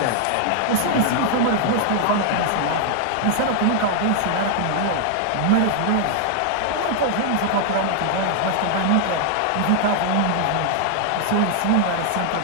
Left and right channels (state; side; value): different; both; correlation 0.00